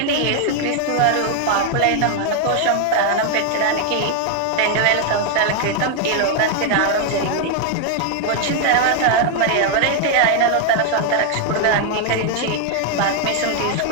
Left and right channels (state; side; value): different; both; correlation 0.00